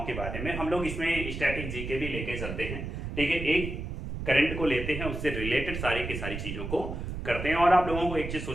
के बारे में हम लोग इसमें स्टैटिक जीके भी लेके चलते हैं। ठीक है, एक करंट को लेते हैं, उससे रिलेटेड सारी की सारी चीजों को करते हैं और आप लोगों को एक चीज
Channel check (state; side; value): noise; right; rumble, 6 dB below the sound